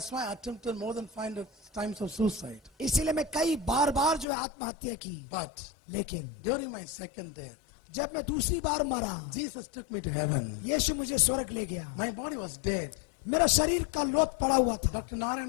why I attempted more than 500 times of suicide. इसीलिए मैं कई बार जो है आत्महत्या की। But लेकिन during my second death, जब मैं दूसरी बार मरा, Jesus took me to heaven. यीशु मुझे स्वर्ग ले गया। My body was dead. मेरा शरीर का लोथ पड़ा हुआ था। Dr.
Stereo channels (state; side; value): drops out; right; at 4.2 s